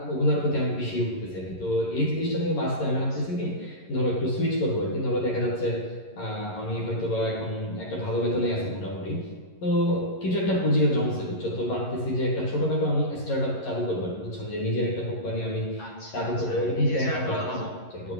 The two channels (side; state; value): right; late; 11 ms